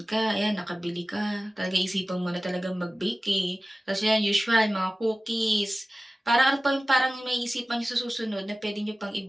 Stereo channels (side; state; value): both; normal; correlation 0.97